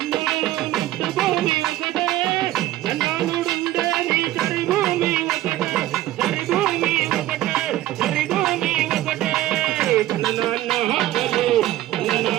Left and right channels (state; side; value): quieter; left; 14.8 dB